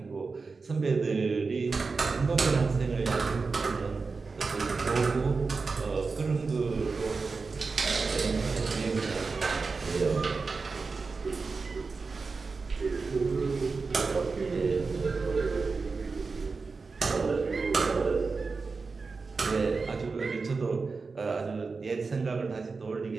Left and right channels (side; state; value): left; quieter; 4.4 dB